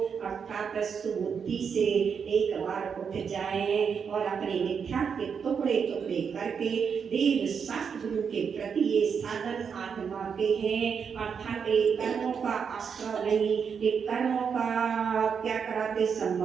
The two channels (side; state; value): left; quieter; 6.6 dB